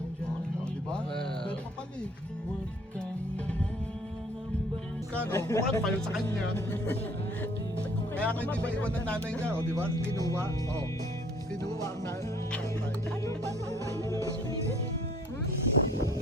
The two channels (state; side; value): normal; both; correlation 0.57